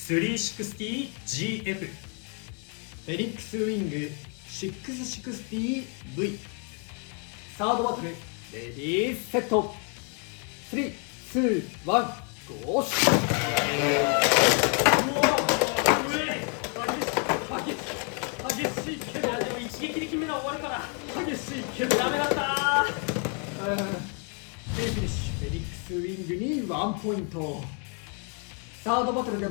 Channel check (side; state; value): right; quieter; 39.5 dB